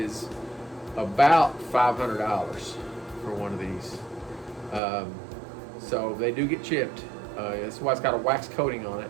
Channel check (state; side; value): drops out; left; at 4.8 s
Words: about $500 for one of these. So they do get chipped. That's why it's got a wax coating on